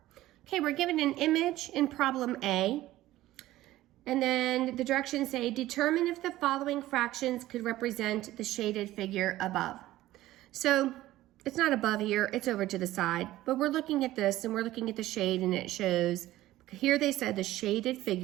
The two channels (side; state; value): left; quieter; 15.6 dB